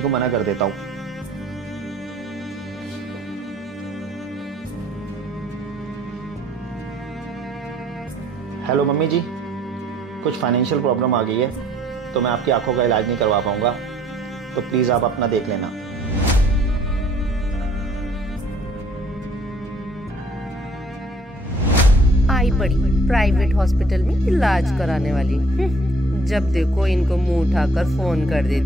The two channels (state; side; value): normal; both; correlation 0.60